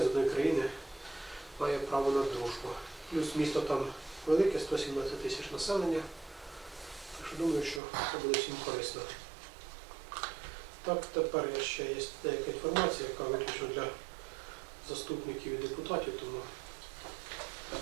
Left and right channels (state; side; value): drops out; left; at 7.8 s